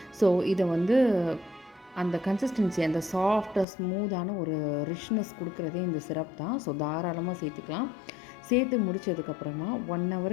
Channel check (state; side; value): drops out; right; at 3.7 s